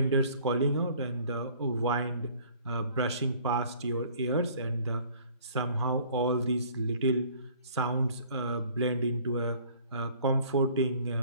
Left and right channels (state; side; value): inverted; both; correlation -0.54